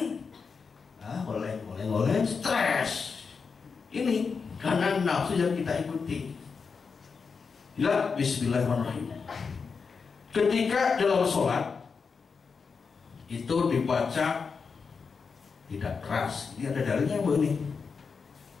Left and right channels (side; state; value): right; quieter; 5.3 dB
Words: Boleh, stres. Ini karena nafsu yang kita ikuti. Ya, bismillahirrahmanirrahim. Ketika dalam sholat itu dibaca tidak keras. Ini ada dalilnya, Bu, ini.